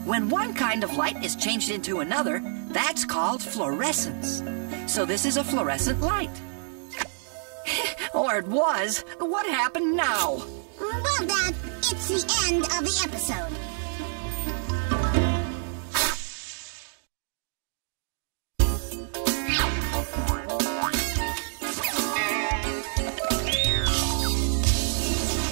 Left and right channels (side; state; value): left; silent; 60 dB below the other